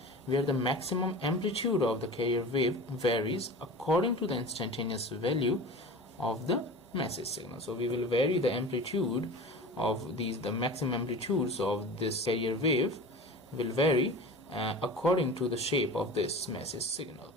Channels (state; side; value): normal; both; correlation 0.35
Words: where the maximum amplitude of the carrier wave varies according to the instantaneous value of the message signal. So we will vary the amplitude of the maximum amplitudes of this carrier wave will vary according to the shape of this message signal.